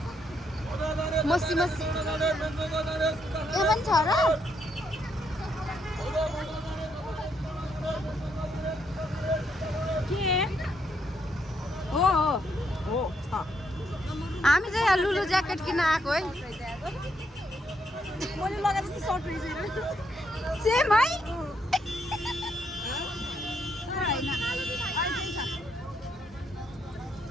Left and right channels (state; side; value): normal; both; correlation 0.76